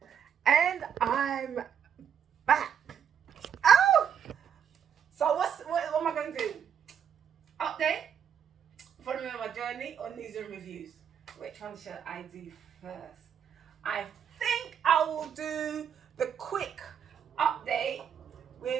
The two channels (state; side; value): quieter; left; 8.1 dB